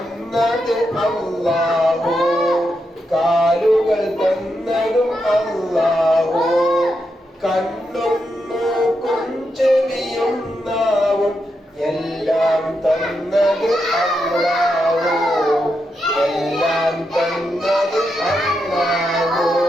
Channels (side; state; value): both; normal; correlation 0.84